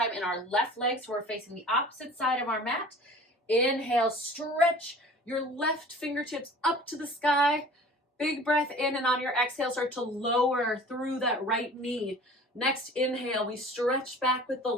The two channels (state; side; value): normal; both; correlation 0.44